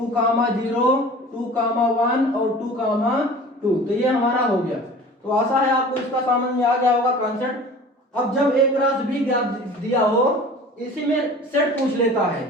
0 2, 1 और 2, 2। तो ये हमारा हो गया। तो आशा है आपको इसका समझ में आ गया होगा कॉन्सेप्ट। अब जब एक क्रॉस भी ज्ञात दिया हो, इसी में सेट पूछ लेता है,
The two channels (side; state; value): both; normal; correlation 0.42